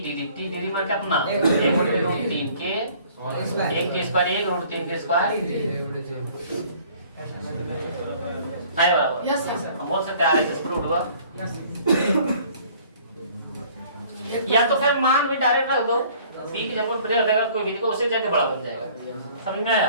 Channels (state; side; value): inverted; both; correlation -0.54